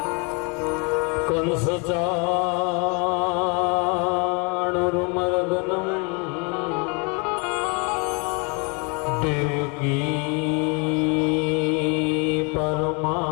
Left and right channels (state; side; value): quieter; right; 32.8 dB